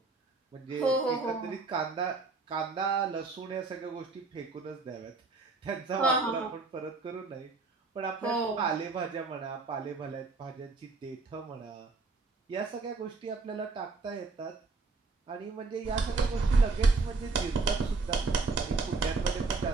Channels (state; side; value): quieter; left; 4.0 dB